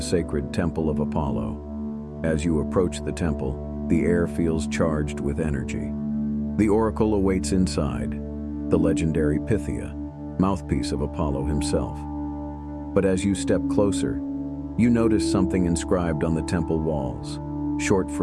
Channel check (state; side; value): identical; both; correlation 1.00